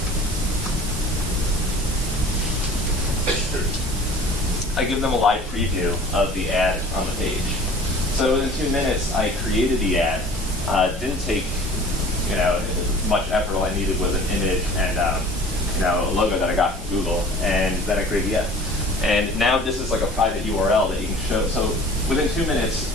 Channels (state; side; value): normal; both; correlation 0.46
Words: I give them a live preview of the ad on the page. So in 2 minutes, I created the ad. Didn't take, much effort. All I needed was an image and, a logo that I got from Google, and then I created the ad. And now this is like a private URL that you can show. So within 2 minutes,